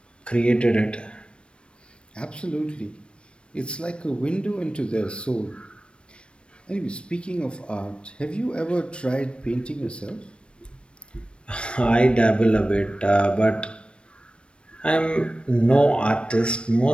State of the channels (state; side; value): late; right; 0.058 ms